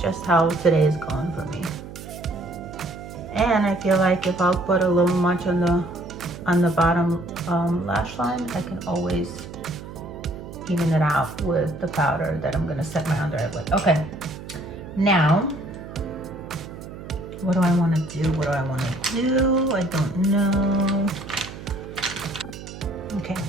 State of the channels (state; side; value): noise; right; hum, 13 dB below the sound